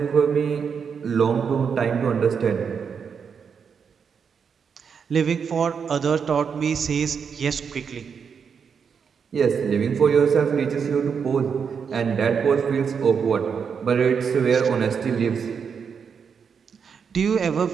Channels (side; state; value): left; quieter; 6.5 dB